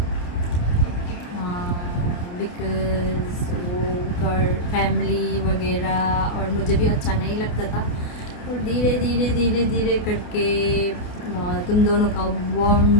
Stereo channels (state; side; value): late; right; 29 ms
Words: बिकॉज वो घर फैमिली वगैरह और मुझे भी अच्छा नहीं लगता था. और धीरे करके तुम दोनों का